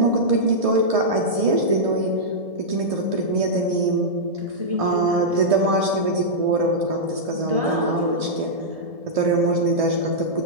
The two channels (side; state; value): left; late; 1.7 ms